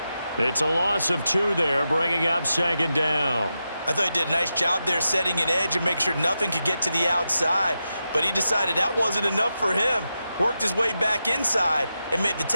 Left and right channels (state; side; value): inverted; both; correlation -0.89